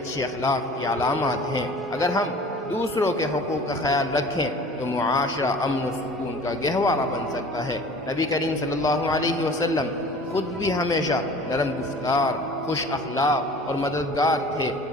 اخلاق کی علامات ہیں۔ اگر ہم دوسروں کے حقوق کا خیال رکھیں تو معاشرہ امن و سکون کا گہوارہ بن سکتا ہے۔ نبی کریم صلی اللہ علیہ وسلم خود بھی ہمیشہ نرم گفتار، خوش اخلاق اور مددگار تھے۔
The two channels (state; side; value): normal; both; correlation 0.45